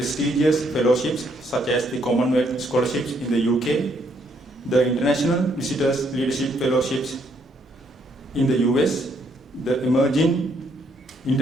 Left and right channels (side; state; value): both; normal; correlation 0.71